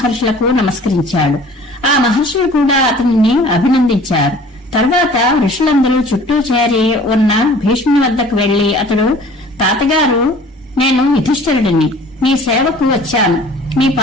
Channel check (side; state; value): both; normal; correlation 0.49